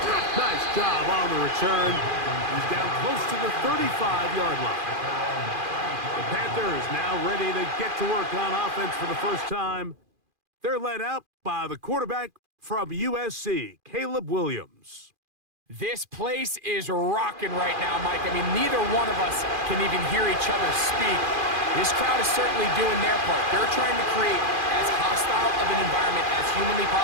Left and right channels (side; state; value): left; late; 2.4 ms